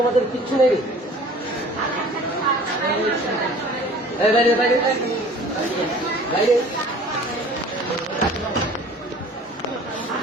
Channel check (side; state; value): both; normal; correlation 0.47